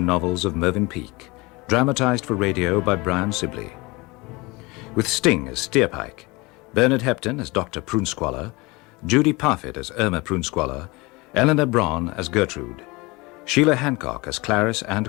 novels of Mervyn Peake, dramatized for radio by Brian Sibley. With Sting as Steerpike, Bernard Hepton as Dr. Prunesqualler, Judy Parfitt as Irma Prunesqualler, Eleanor Braun as Gertrude, Sheila Hancock as Clarice and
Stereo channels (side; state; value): right; quieter; 24.4 dB